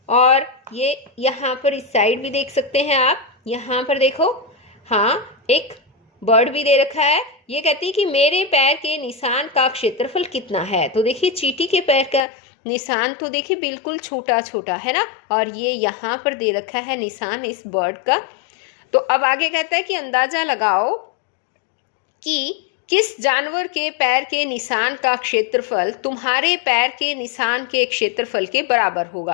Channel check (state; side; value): drops out; right; at 12.2 s